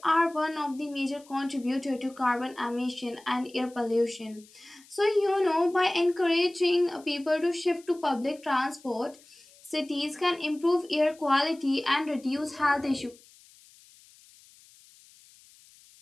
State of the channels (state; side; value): noise; left; hiss, 26 dB below the sound